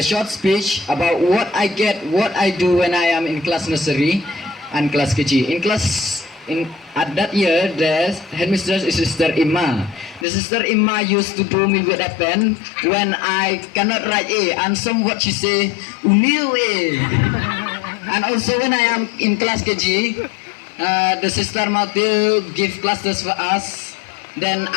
short speech about what I do when I am in class nursery and class KG. At that year, the headmistress is Sister Ima. The Sister Ima used to do me with a pen when I cannot write A, and somewhat she say, "Unil A." And also when I am in class KG, the Sister Tempyl give classes for us. Then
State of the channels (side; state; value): right; drops out; at 10.2 s